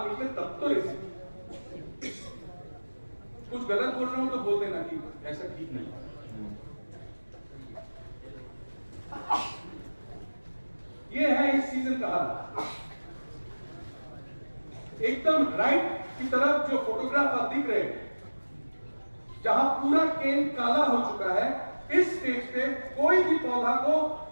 लीजिए तब तो रेसिड्यू। कुछ गलत बोल रहा हूं तो बोल देना कि ऐसा ठीक नहीं। ये है इस सीजन का हाल। एकदम राइट की तरफ जो फोटोग्राफ आप दिख रहे हैं, जहां पूरा केन काला हो चुका है, इस स्टेज पे कोई भी पौधा को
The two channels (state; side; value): inverted; both; correlation -1.00